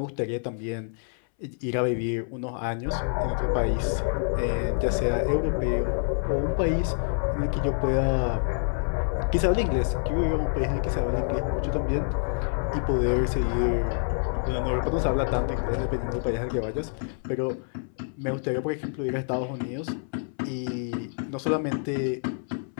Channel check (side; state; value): right; silent; 60 dB below the other